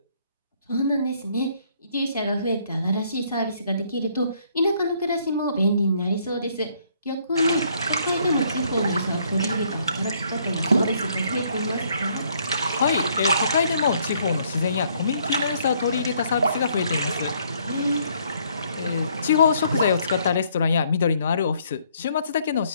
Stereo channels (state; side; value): inverted; both; correlation -0.67